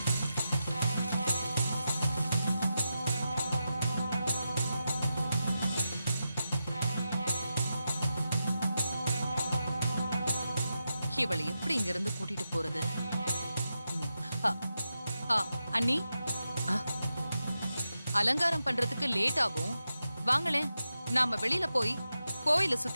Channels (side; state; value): both; inverted; correlation -0.88